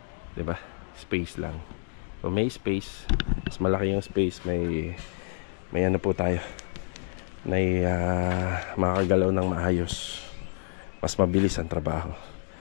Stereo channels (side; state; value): right; silent; 55 dB below the other